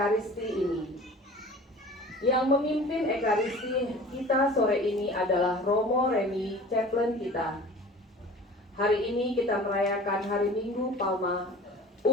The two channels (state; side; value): normal; both; correlation 0.42